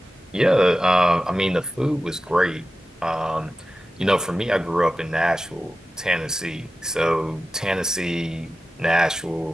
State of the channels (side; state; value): both; normal; correlation 0.93